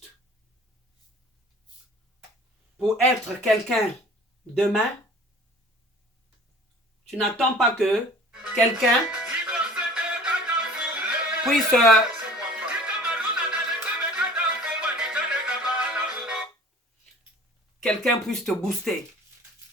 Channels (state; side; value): normal; both; correlation 0.47